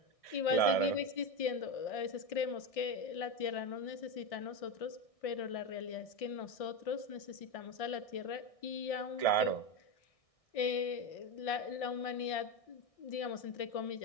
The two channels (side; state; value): right; late; 1.6 ms